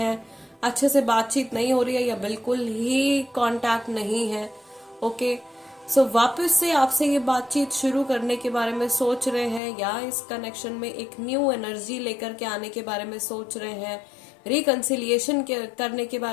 अच्छे से बातचीत नहीं हो रही है, या बिल्कुल ही कांटेक्ट नहीं है, ओके। सो वापस से आपसे ये बातचीत शुरू करने के बारे में सोच रहे हैं, या इस कनेक्शन में एक न्यू एनर्जी लेकर के आने के बारे में सोच रहे हैं, रिकंसिलिएशन करने के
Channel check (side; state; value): right; drops out; at 9.6 s